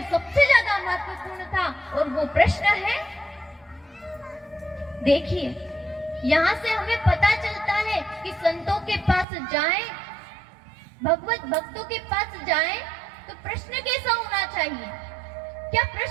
सबसे ज्यादा महत्वपूर्ण था, और वो प्रश्न है, देखिए यहाँ से हमें पता चलता है कि संतों के पास जाएं, भगवत भक्तों के पास जाएं, तो प्रश्न कैसा होना चाहिए, क्या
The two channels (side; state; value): left; drops out; at 9.2 s